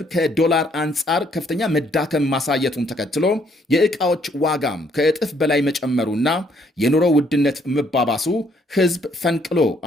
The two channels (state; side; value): normal; both; correlation 0.68